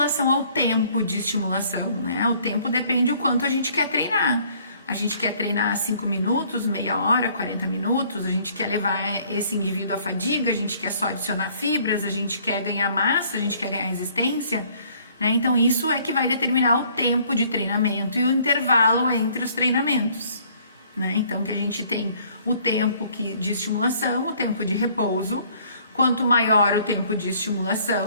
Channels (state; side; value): inverted; both; correlation -0.60